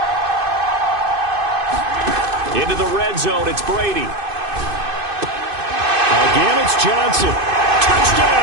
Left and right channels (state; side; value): late; left; 2.5 ms